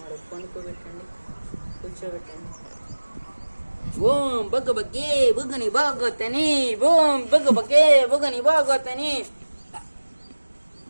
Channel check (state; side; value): inverted; both; correlation -1.00